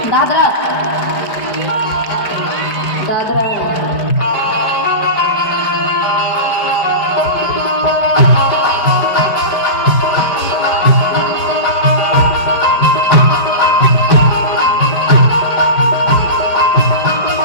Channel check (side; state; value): right; late; 4.7 ms